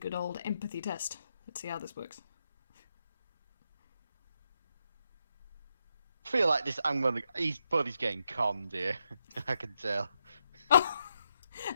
old empathy test. Let's see how this works. I feel like this. Buddy's getting conned here. I can tell.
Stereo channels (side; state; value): both; inverted; correlation -0.82